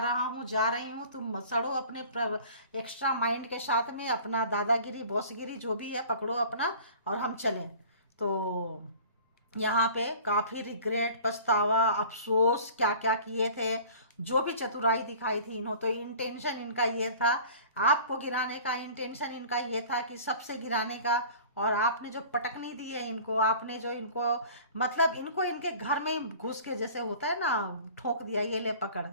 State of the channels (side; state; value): both; inverted; correlation -0.44